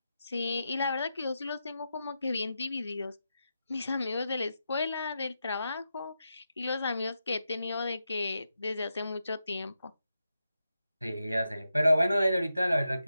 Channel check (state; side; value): inverted; both; correlation -0.87